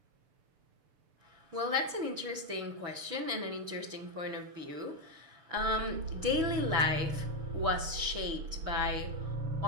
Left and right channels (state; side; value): late; left; 6.9 ms